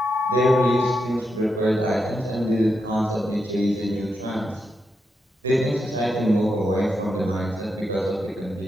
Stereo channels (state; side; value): normal; both; correlation 0.85